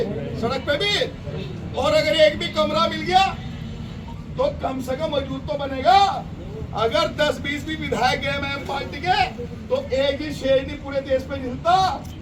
सड़क पे भी। और अगर एक भी कमरा मिल गया तो कम से कम मौजूद तो बनेगा। अगर 10-20 भी विधायक है एमआईएम पार्टी के, तो एक ही शेर नहीं पूरे देश पे मिलता।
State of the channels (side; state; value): both; identical; correlation 1.00